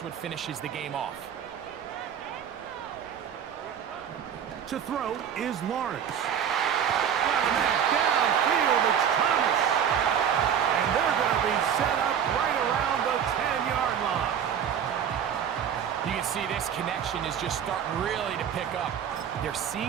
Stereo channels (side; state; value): left; quieter; 8.5 dB